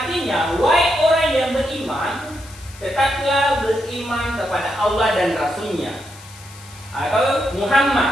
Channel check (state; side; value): noise; left; hiss, 20 dB below the sound